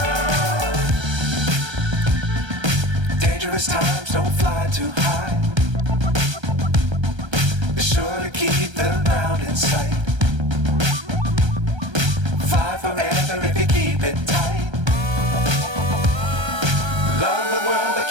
Times don't fly too high. Be sure to keep the ground in sight. Fly forever if you keep it tight. Love the world but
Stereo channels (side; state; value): left; late; 1.3 ms